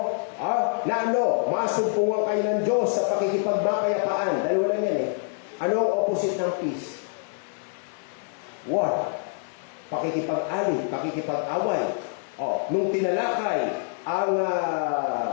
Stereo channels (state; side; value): silent; right; 61 dB below the other